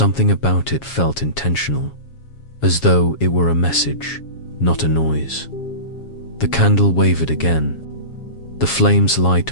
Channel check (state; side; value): late; right; 7.3 ms